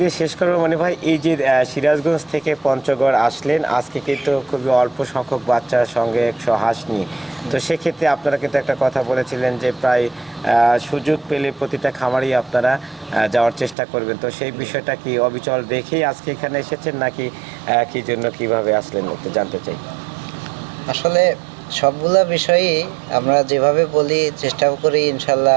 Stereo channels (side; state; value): left; drops out; at 13.8 s